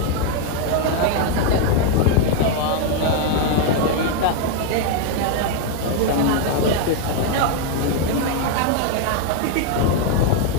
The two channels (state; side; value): different; both; correlation 0.01